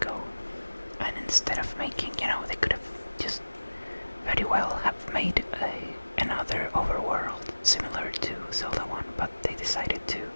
And instead of making, they could have just very well have made another overworld similar to Zelda 1, but they decided to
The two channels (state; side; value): inverted; both; correlation -1.00